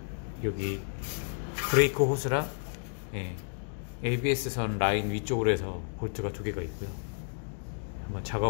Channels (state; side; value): silent; right; digital silence